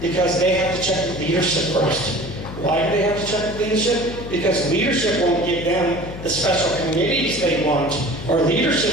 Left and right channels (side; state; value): left; noise; hum, 11 dB below the sound